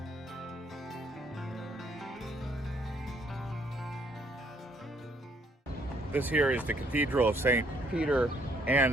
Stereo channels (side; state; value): both; normal; correlation 0.67